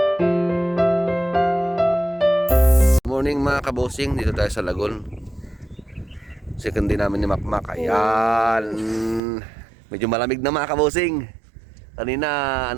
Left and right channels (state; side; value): drops out; left; at 9.2 s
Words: Morning mga kabosing, dito tayo sa Lagun. Second day namin ni Makmak. Ayan. Medyo malamig na mga kabosing. Kanina